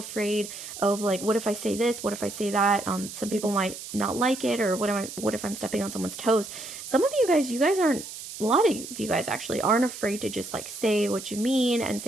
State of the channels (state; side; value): noise; right; hiss, 11 dB below the sound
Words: of like, what if I say this? What if I say that? Some people might not like it, or what if I'm stepping on someone's toes? Some of you guys aren't, a lot of you guys actually aren't afraid to just like say what you mean and